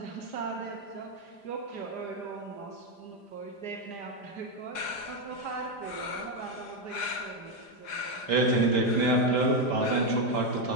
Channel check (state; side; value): late; right; 5.0 ms